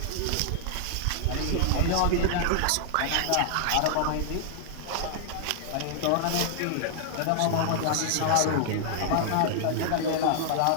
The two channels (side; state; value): both; different; correlation -0.01